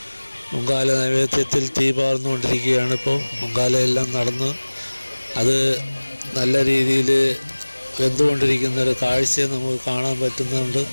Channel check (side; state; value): both; inverted; correlation -1.00